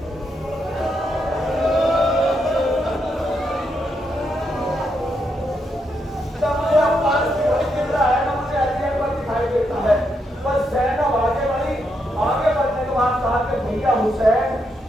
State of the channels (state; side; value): normal; both; correlation 0.80